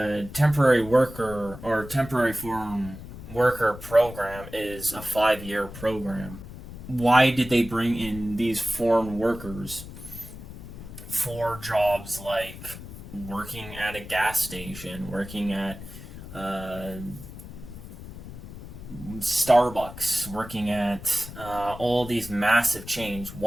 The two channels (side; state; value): left; noise; rumble, 13 dB below the sound